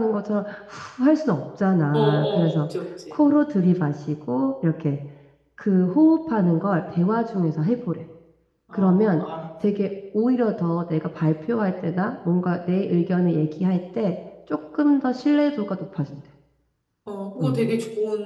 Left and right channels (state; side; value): identical; both; correlation 1.00